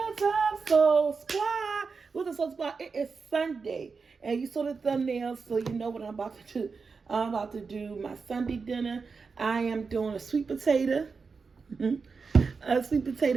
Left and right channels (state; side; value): quieter; left; 4.9 dB